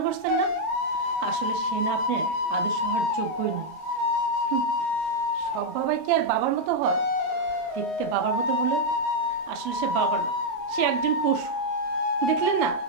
করছেন না, আসলে সে না আপনার আদর্শ হওয়ার যোগ্যই নয়। সব বাবাই কি আর বাবার মতো হয়? দেখতে বাবার মতো হলে আসলে সে বাবা না, সে একজন পশু। দেখলেন না,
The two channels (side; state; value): left; late; 32 ms